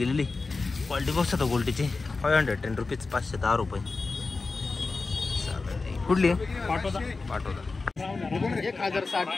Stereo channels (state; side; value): quieter; right; 3.9 dB